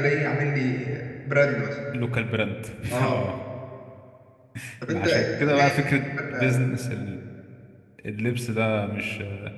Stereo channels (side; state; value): both; identical; correlation 1.00